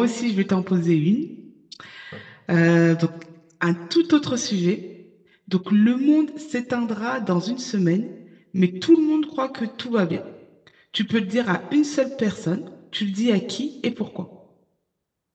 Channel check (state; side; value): identical; both; correlation 1.00